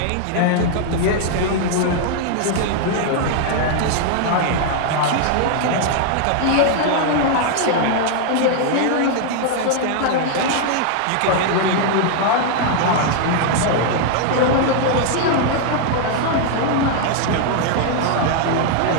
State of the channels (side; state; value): both; different; correlation 0.00